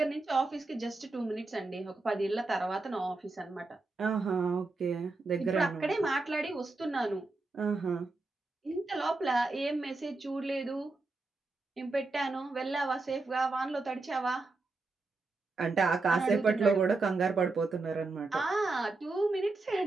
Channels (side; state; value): left; quieter; 3.5 dB